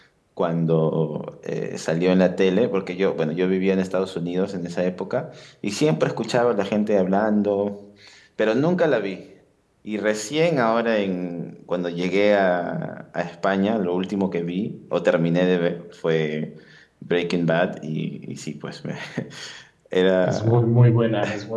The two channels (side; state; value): both; identical; correlation 1.00